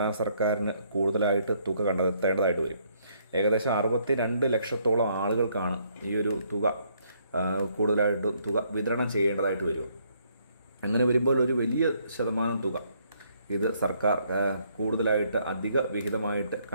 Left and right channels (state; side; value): inverted; both; correlation -0.69